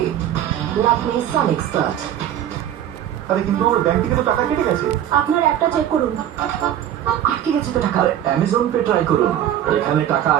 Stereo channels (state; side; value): quieter; left; 11.0 dB